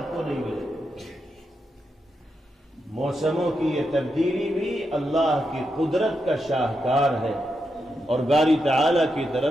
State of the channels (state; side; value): normal; both; correlation 0.85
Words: کو نہیں ملیں گے۔ موسموں کی یہ تبدیلی بھی اللہ کی قدرت کا شاہکار ہے اور باری تعالیٰ کی